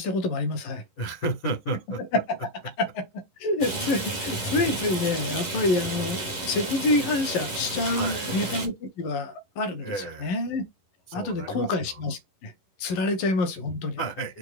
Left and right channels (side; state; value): right; late; 11 ms